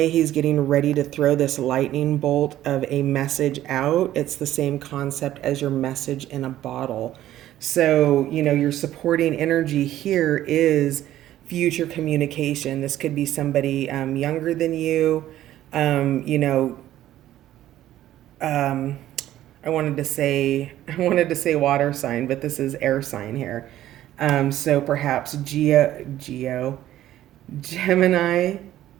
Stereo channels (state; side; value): quieter; left; 13.2 dB